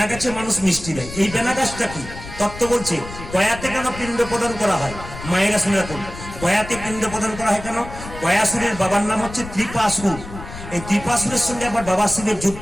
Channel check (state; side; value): noise; left; rumble, 12 dB below the sound